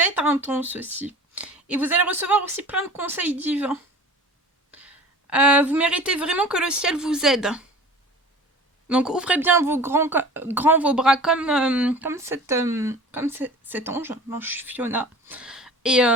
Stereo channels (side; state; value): both; normal; correlation 0.40